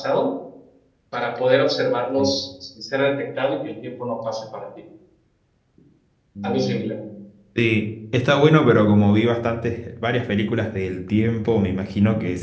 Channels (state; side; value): identical; both; correlation 1.00